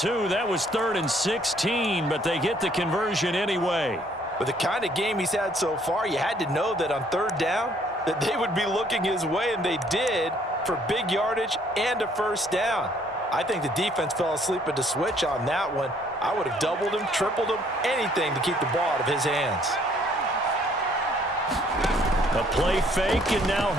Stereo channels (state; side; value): normal; both; correlation 0.63